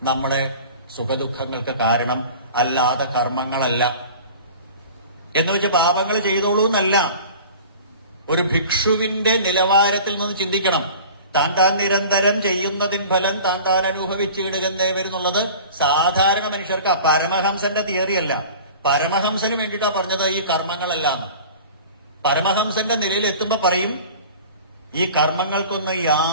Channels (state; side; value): inverted; both; correlation -0.41